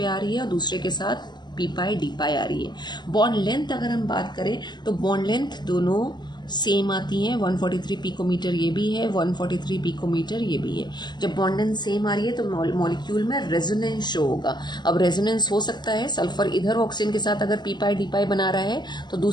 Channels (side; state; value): right; late; 0.21 ms